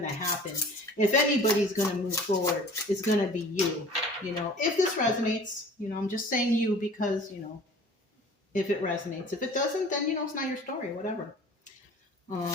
to happen. If anybody's going to move forward, it's going to be you. If this resonates, I'm just saying you because, if it resonates. If it doesn't, then, it's not your story, whatever.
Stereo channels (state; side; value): normal; both; correlation 0.46